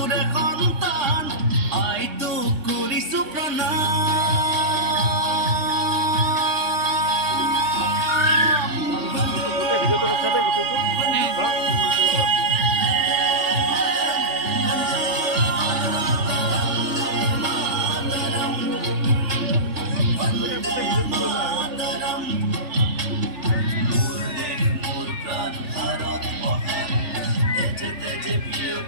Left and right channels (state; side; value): late; left; 3.4 ms